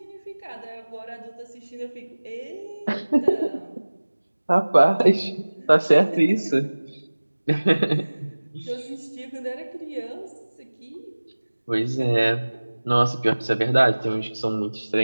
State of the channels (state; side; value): inverted; both; correlation -1.00